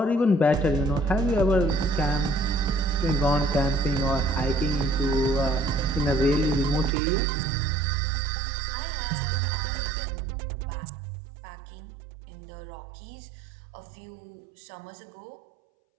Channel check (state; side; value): drops out; left; at 6.9 s